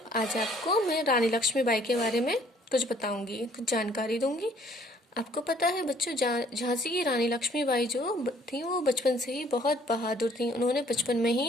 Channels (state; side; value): normal; both; correlation 0.60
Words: आज आपको मैं रानी लक्ष्मीबाई के बारे में कुछ बताऊंगी, कुछ जानकारी दूंगी। आपको पता है बच्चों, झांसी की रानी लक्ष्मीबाई जो थी वो बचपन से ही बहुत बहादुर थी। उन्होंने बचपन में